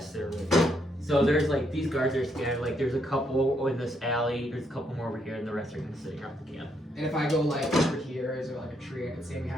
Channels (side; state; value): both; normal; correlation 0.75